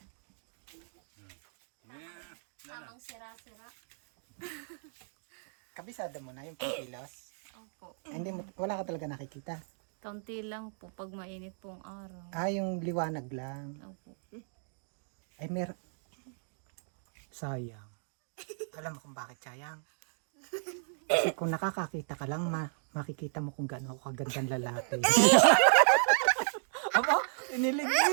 Tamang sira-sira. Kabisado mo na yung pangkilos. Opo. Hindi mo, wala ka talaga nakikita. Kaunti lang po pag mainit pong araw. Yung liwanag lang. Opo. Ay, sayang. Alam mo kung bakit sayang? Kasi kung nakakakita ka lang, makikita mo kung gaano ako kagandang lalaki. Aba, inilig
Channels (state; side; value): silent; left; digital silence